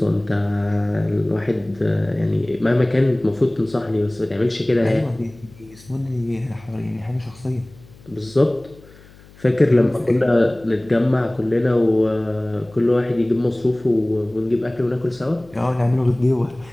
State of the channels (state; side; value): noise; left; hum, 24 dB below the sound